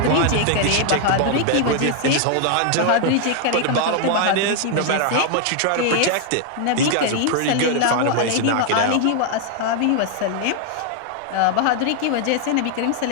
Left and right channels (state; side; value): different; both; correlation 0.00